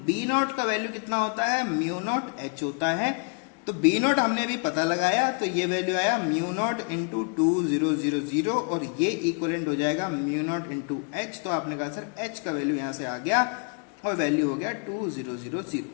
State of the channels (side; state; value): right; quieter; 38.5 dB